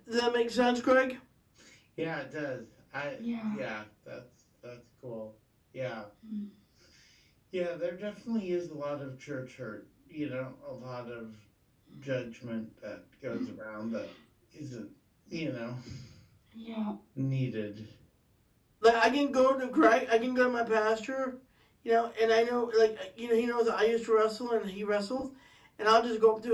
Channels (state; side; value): identical; both; correlation 1.00